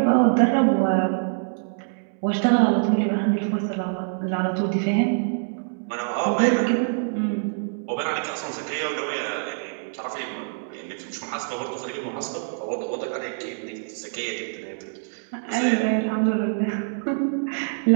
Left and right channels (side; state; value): left; silent; 62 dB below the other